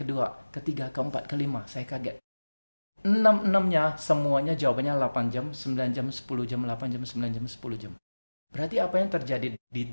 ketiga, keempat, kelima. Saya kaget. 6-6-nya semuanya jawabannya 8 jam, 9 jam, 10 jam, 8 jam, 9 jam, 10 jam. Berarti apa yang terjadi di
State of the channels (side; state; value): both; inverted; correlation -1.00